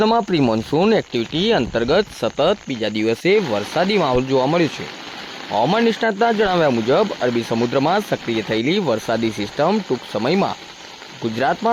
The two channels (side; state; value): both; identical; correlation 1.00